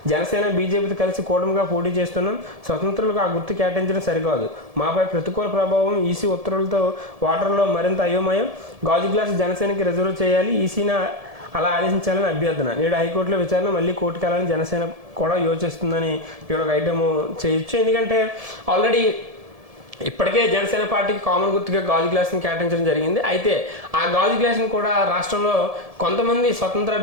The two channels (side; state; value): left; late; 1.7 ms